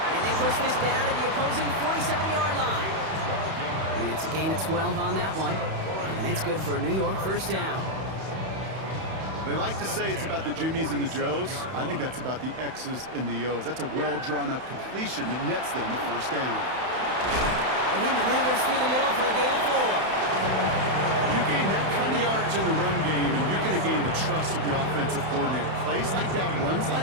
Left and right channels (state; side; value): late; left; 31 ms